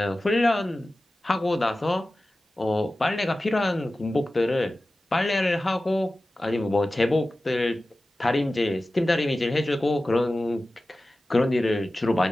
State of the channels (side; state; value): both; normal; correlation 0.96